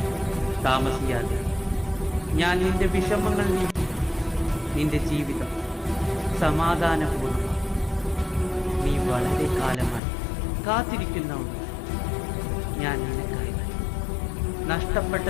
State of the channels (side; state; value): right; drops out; at 10.0 s